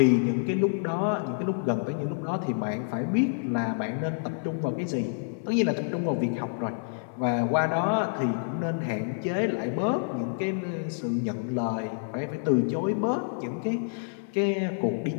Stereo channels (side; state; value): right; silent; 59 dB below the other